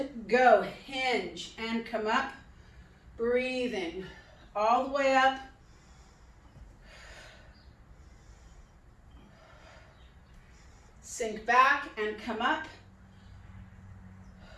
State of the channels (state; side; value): identical; both; correlation 1.00